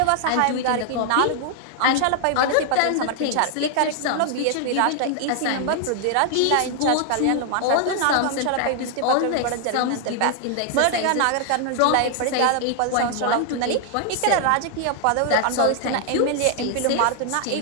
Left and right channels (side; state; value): both; different; correlation 0.00